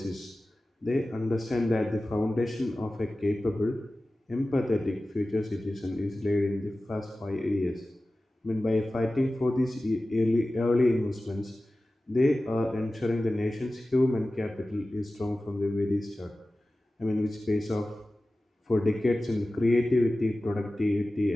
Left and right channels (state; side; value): normal; both; correlation 0.96